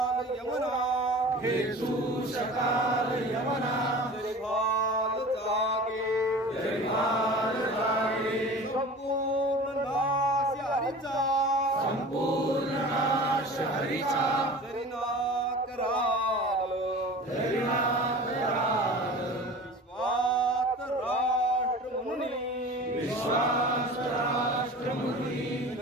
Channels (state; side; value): normal; both; correlation 0.38